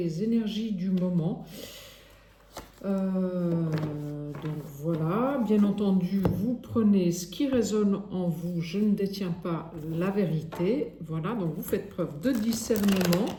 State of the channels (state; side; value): identical; both; correlation 1.00